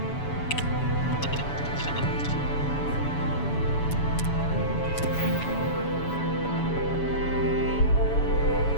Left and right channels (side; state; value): right; late; 7.1 ms